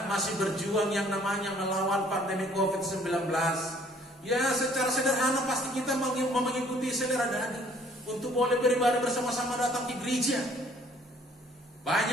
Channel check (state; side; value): normal; both; correlation 0.59